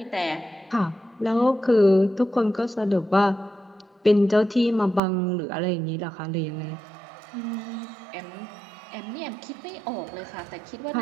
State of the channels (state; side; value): drops out; left; at 5.0 s